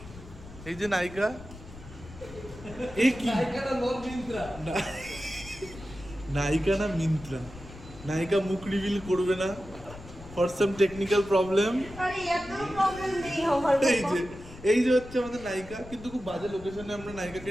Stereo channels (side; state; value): left; noise; rumble, 16 dB below the sound